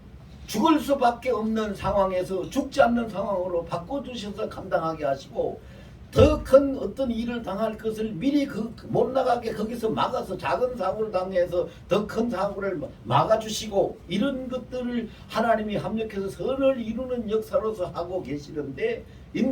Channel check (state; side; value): identical; both; correlation 1.00